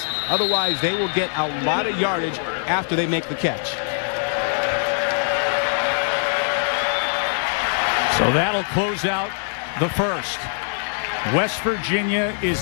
Otherwise, they will get a lot of yardage after they make the catch. So that'll close out the first. West Virginia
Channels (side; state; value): right; silent; 64 dB below the other